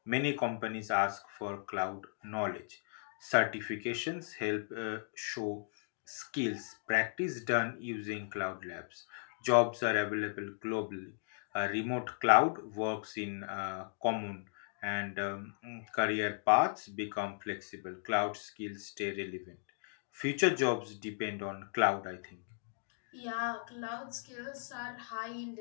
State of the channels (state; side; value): silent; right; digital silence